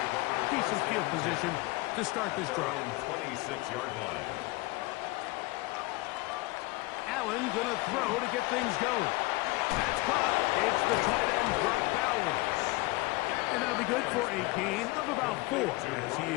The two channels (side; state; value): right; quieter; 22.5 dB